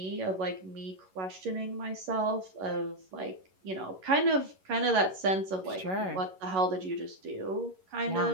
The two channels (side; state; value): left; late; 11 ms